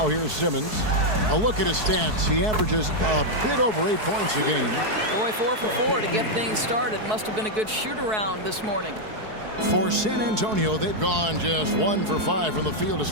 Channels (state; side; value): late; left; 4.6 ms